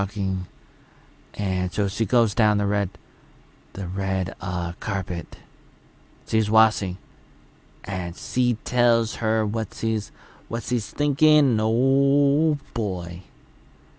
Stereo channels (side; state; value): both; identical; correlation 1.00